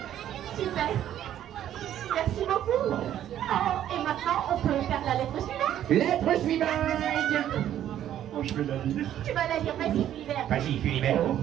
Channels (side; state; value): left; quieter; 11.3 dB